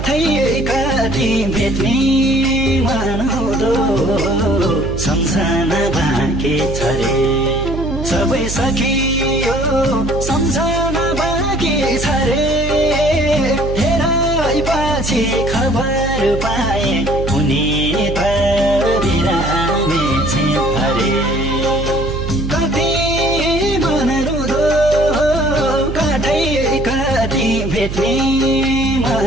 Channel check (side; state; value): right; noise; hum, 5 dB below the sound